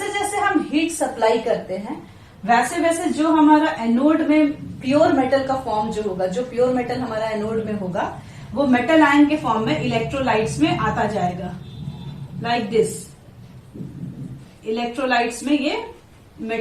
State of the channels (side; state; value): both; identical; correlation 1.00